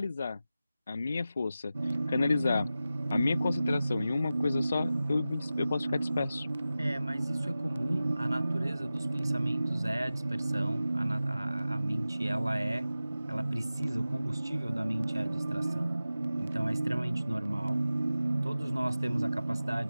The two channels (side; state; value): both; inverted; correlation -0.94